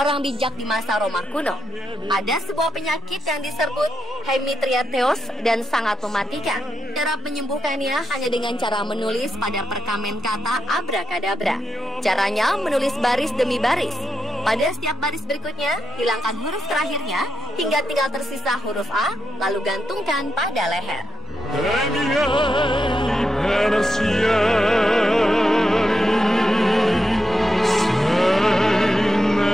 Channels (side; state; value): both; normal; correlation 0.83